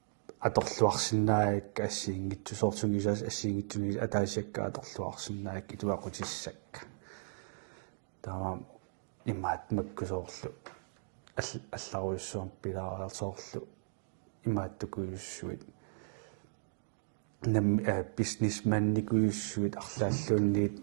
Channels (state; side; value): silent; left; digital silence